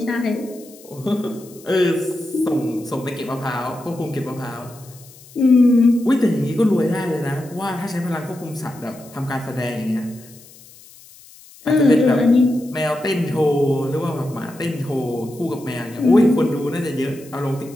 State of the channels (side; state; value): left; noise; hiss, 23 dB below the sound